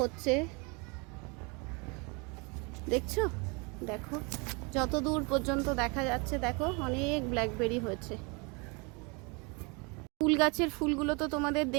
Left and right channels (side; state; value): left; quieter; 30.6 dB